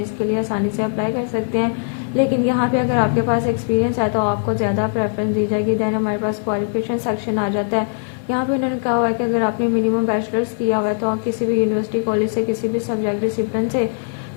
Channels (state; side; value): silent; right; 60 dB below the other